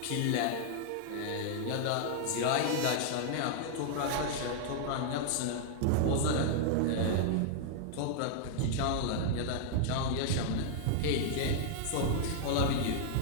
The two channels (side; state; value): both; different; correlation -0.01